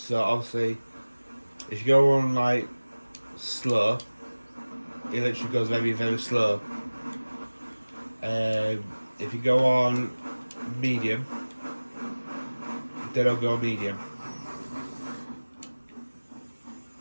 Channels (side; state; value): both; inverted; correlation -1.00